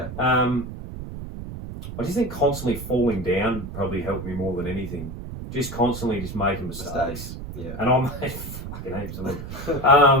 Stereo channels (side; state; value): right; noise; rumble, 9 dB below the sound